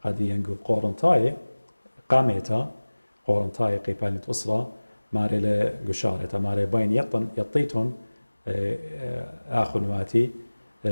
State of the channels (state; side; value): inverted; both; correlation -1.00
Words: قد ينقو قورنتاي قاميتا قورنتاي قيبانيت أسرة ماري لقشارة ماري باين يطيتون آخن واتي